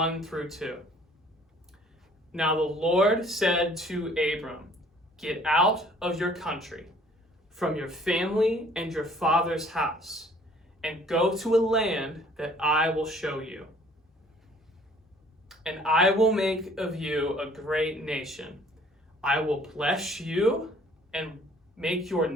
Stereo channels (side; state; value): both; normal; correlation 0.56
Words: through 2. Now the Lord said to Abram, "Get out of your country, from your family and your father's house, and go to a land that I will show you. And I will make of you a great nation. I will bless you and make your